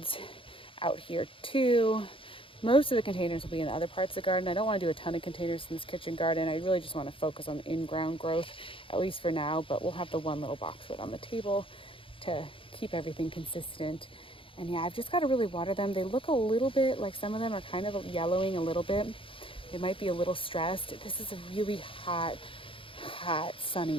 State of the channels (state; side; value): late; right; 0.26 ms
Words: out here too. Most of the containers will be in the other parts of the garden. I don't want to do a ton of containers in this kitchen garden. I really just want to focus on the in-ground growth, at least for now. But we'll have the one little boxwood on the table to keep everything consistent. And yeah, I've just got to really water them. They look a little bit like, some of them are kind of yellowing a little bit. They might be a little stressed. This is a really hot,